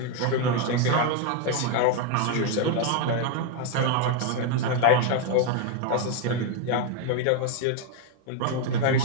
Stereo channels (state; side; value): different; both; correlation 0.01